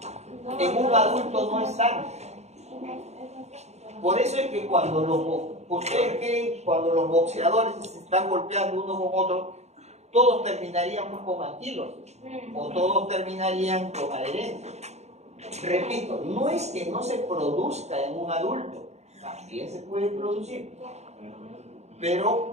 En un adulto no es tanto. Por eso es que ustedes creen cuando los boxeadores se están golpeando uno con otro, todos terminaríamos con anquilosis o todos terminarían con adherencia. Repito, no es que no se produzca en un adulto, también se puede producir,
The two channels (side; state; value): left; late; 0.32 ms